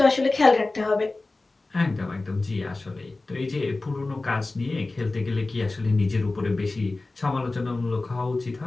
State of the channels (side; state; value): right; quieter; 3.2 dB